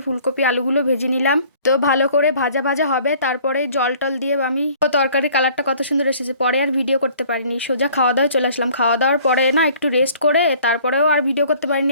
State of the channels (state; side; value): inverted; both; correlation -0.54